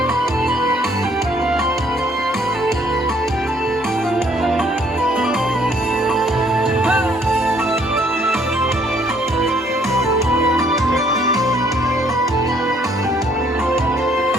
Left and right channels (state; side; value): normal; both; correlation 0.65